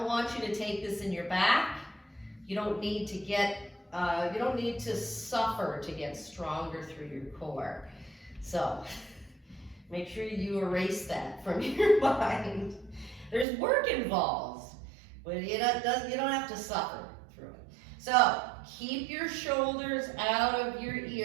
want you to take this in your back. You don't need to get, you don't need to suffer to get stronger through your core. So make sure you erase that from your mind. There's work involved, but you don't have to suffer through it. So keep your shoulders out of your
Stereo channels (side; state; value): left; drops out; at 13.5 s